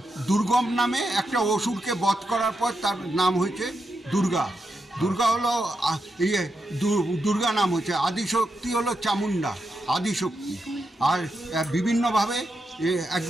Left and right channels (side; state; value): both; normal; correlation 0.85